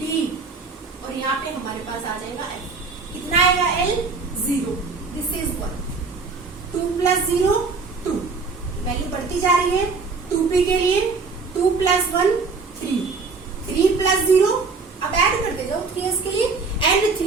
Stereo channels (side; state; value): left; quieter; 4.5 dB